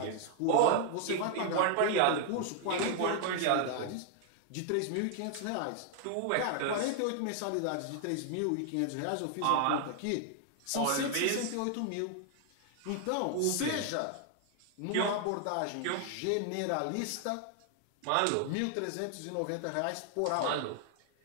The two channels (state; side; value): different; both; correlation 0.00